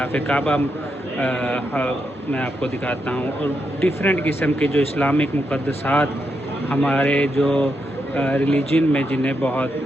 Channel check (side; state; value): both; normal; correlation 0.83